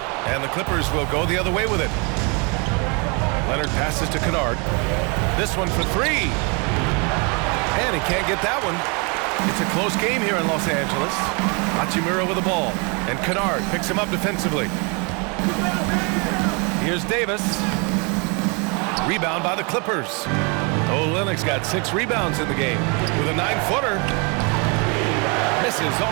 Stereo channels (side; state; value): left; quieter; 32.5 dB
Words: and the Clippers will go the other way with it. Leonard passes to Kennard. This one for 3. And he can't get that one. It's a close game here in Los Angeles. Hachimura with the ball, and Kennard picks him up defensively. Here's Davis. Rebound by the Clippers. Olynyk's got 6 rebounds in the game with a 9-footer. Misses